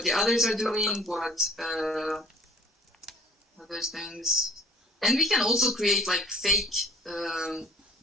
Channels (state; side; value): normal; both; correlation 0.49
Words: the others are doing, what other things. And we can also create like fake